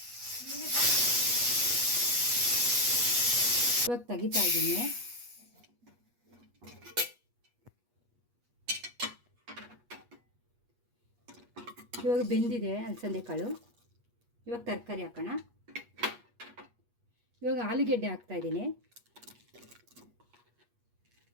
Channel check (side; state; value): left; late; 8.3 ms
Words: ಇವಾಗ ತೆಗಿತಾ ಇದ್ದೀನಿ. ಇವಾಗ ಬೆಂದಿದೆ ಅಲಸಂದೆ ಕಾಳು. ಇವಾಗ ತರಕಾರಿ ಹಾಕೋಣ. ಇವಾಗ ಆಲೂಗೆಡ್ಡೆ ಹಾಕ್ತಾಯಿದ್ದೀನಿ,